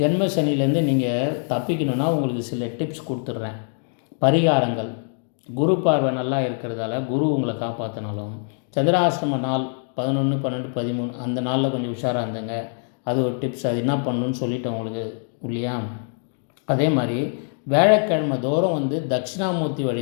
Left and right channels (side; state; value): right; silent; 56 dB below the other